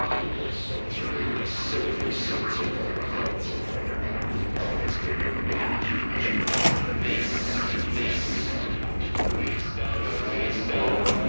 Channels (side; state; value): both; inverted; correlation -1.00